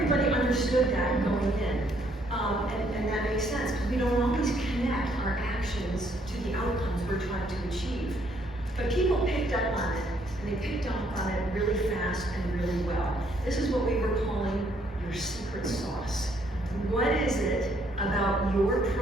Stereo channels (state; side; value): normal; both; correlation 0.68